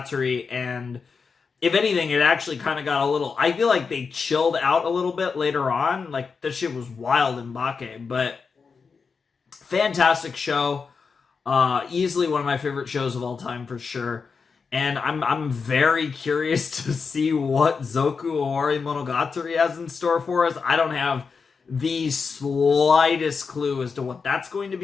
and if anything, it actually kind of got a little, I feel like they chilled out a little bit later on. Like, this shit was wild in Bake, but fantastic show. Easily one of my favorite shows of all time for sure. And I'm very curious to see what Zoku Owari Monogatari has in store for us. I don't have the slightest clue as to what that's going to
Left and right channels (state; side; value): quieter; right; 5.3 dB